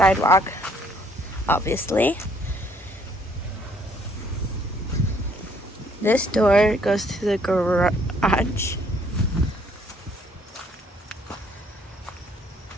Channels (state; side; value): normal; both; correlation 0.65